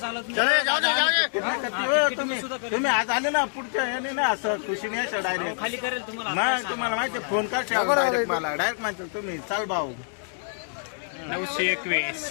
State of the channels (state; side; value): silent; right; digital silence